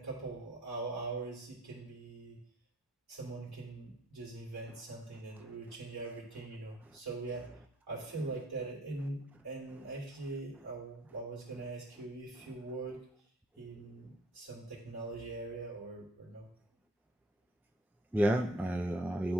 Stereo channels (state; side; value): normal; both; correlation 0.60